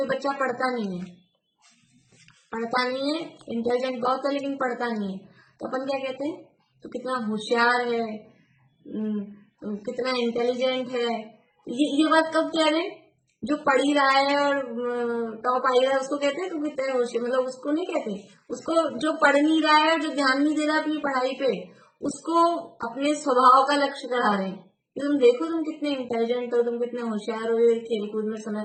बच्चा पढ़ता नहीं है, इंटेलिजेंट बहुत है लेकिन पढ़ता नहीं है, तो अपन क्या कहते हैं, तो कितना होशियार है, कितना इंटेलिजेंट है। ये बात कब कह रहे हैं? जो पढ़ ही रहा है और टॉप आई रहा है उसको कहते हैं तो कितने होशियार, मतलब उसको नहीं कहते, उसको जो पढ़ नहीं रहा है, जो ध्यान नहीं दे रहा अपनी पढ़ाई पे, उसको अपने स्वभाव का लक्ष्य करा रहे हैं कि तुम देखो तुम कितने इंटेलिजेंट हो, तुम कितने होशियार हो, खेल कूद में समय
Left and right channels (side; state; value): both; identical; correlation 1.00